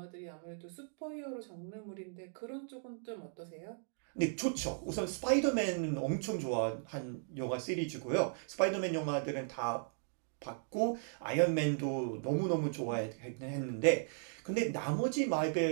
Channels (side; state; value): left; silent; digital silence